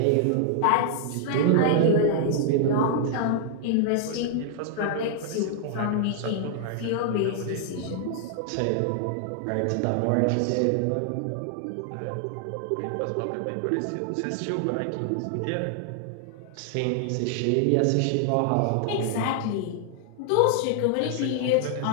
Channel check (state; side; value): different; both; correlation 0.00